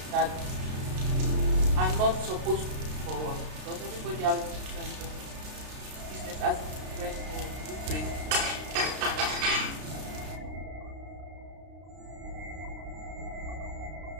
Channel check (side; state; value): left; late; 32 ms